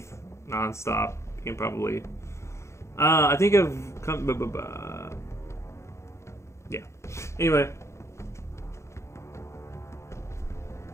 nonstop, you can probably. I think I've come. Yeah. Anyway.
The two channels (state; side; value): late; right; 0.14 ms